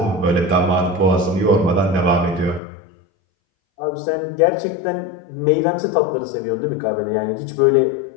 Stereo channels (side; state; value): right; drops out; at 2.6 s